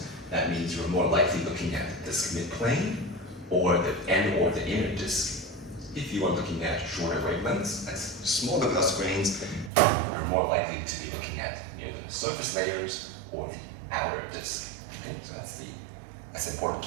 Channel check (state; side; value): drops out; left; at 9.7 s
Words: That means you're more likely looking at the disk midplane or the inner disk. If you are looking at shorter wavelengths, that's smaller dust grains, you're more likely to be looking at near the surface layers or the outer disk. Okay? So that's an important